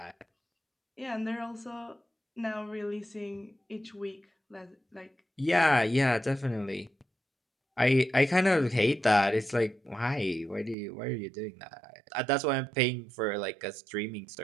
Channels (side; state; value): left; drops out; at 10.8 s